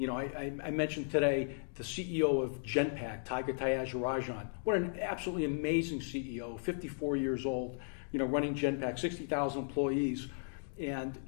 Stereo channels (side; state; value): right; silent; digital silence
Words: mentioned today the CEO of Genpact, Tiger Tyagarajan. What an absolutely amazing CEO, 54 years old, running Genpact, 60,000 employees. And